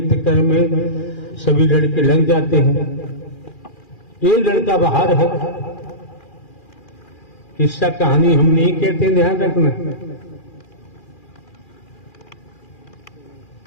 कर्म में सभी लड़के लग जाते हैं। एक लड़का बाहर है। किस्सा कहानी हम नहीं कहते, ध्यान रखना।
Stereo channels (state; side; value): late; right; 2.4 ms